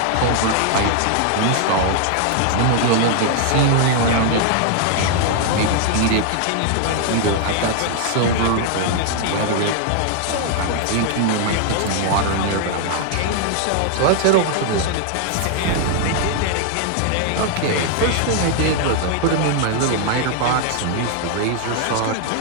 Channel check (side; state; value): both; different; correlation 0.00